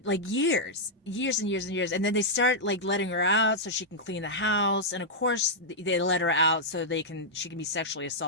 like years and years and years. And then they start like letting her out so she can clean the house. And of course, they let her out so she can be sexually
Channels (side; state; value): both; normal; correlation -0.07